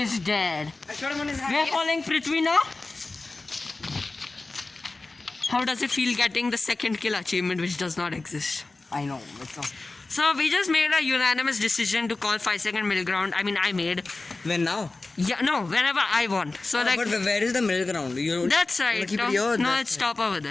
is dead. I shot him on his We are head. following Prithvi now. How does it feel getting the second kill achievement which does not exist? I know. It's not. So we just made a unanimous decision to call 5-second middle ground. I mean, I made. When now? Yeah, no, whenever I want. So like. But where is the middle ground? You That's wanna right. keep No, it here? no, That's it's top over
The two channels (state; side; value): quieter; right; 3.3 dB